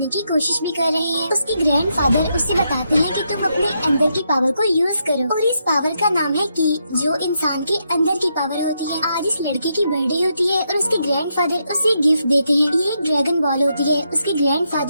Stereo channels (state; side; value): inverted; both; correlation -0.80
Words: की कोशिश भी कर रहे हैं। उसके ग्रैंडफादर उससे बताते हैं कि तुम अपने अंदर की पावर को यूज करो और इस पावर का नाम है की, जो इंसान के अंदर की पावर होती है। आज इस लड़के की बर्थडे होती है और उसके ग्रैंडफादर उसे गिफ्ट देते हैं। ये एक ड्रैगन बॉल होती है। उसके